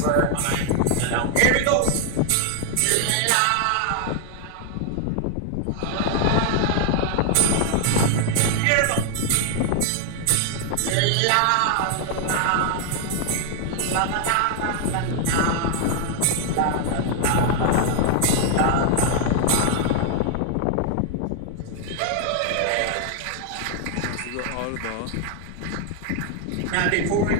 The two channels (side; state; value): both; different; correlation 0.00